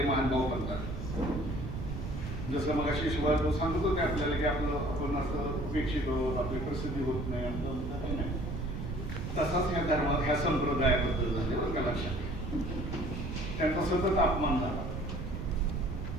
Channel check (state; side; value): noise; right; rumble, 5 dB below the sound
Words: महानुभाव पंथाने. जसं मग अशी शिवाय तो सांगत होते आपल्याला की आपलं आपण असं उपेक्षित होत, आपली प्रसिद्धी होत नाही, आपलं काही नाही. तसाच ह्या धर्मात ह्या संप्रदायाबद्दल झाले बरं का, लक्षात. त्यांचा सतत अपमान झाला,